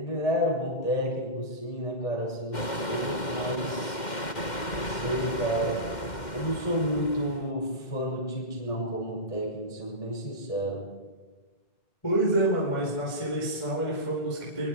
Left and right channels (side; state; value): right; late; 2.1 ms